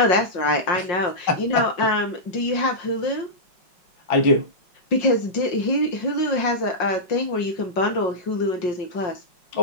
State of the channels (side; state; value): right; late; 5.4 ms